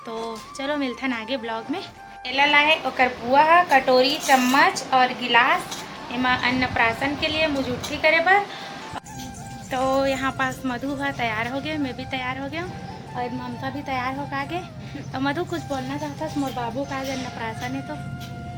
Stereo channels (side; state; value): both; identical; correlation 1.00